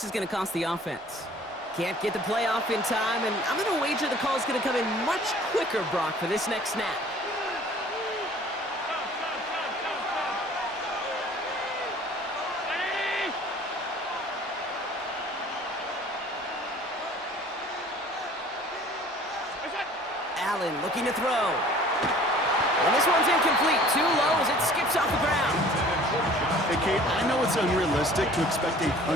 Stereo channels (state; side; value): normal; both; correlation 0.50